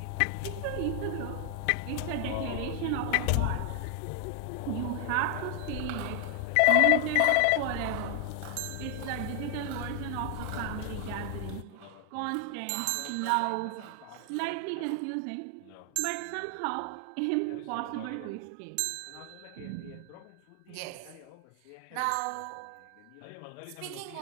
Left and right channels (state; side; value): different; both; correlation 0.00